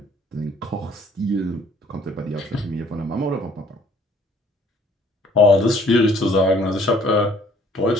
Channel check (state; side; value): normal; both; correlation 0.58